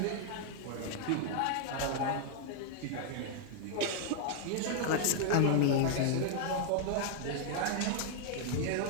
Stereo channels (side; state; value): both; different; correlation 0.00